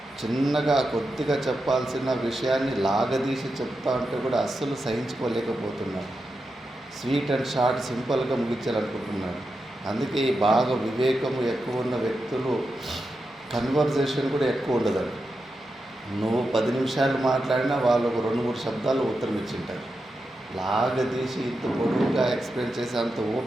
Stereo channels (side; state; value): both; normal; correlation 0.88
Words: చిన్నగా కొద్దిగా చెప్పాల్సిన విషయాన్ని లాగదీసి చెప్తా ఉంటే కూడా అస్సలు సహించుకోలేకపోతున్నాడు. స్వీట్ అండ్ షార్ట్ సింపుల్గా ముగించాలనుకుంటున్నాడు. అందుకే బాగా వివేకము ఎక్కువ ఉన్న వ్యక్తులు కన్వర్జేషన్ కూడా ఎక్కువ ఉండదండి. నువ్వు 10 నిమిషాలు మాట్లాడినా వాళ్ళు ఒక 2-3 శబ్దాలు ఉత్తరం ఇచ్చింటారు. లాగదీసి ఇంత పొడవుగా ఎక్స్ప్లెయిన్ చేసే అంత